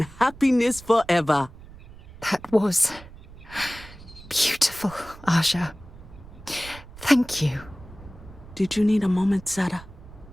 happiness forever. That was beautiful, Aja. Thank you. Did you need a moment, Sarah?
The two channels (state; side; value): noise; right; rumble, 18 dB below the sound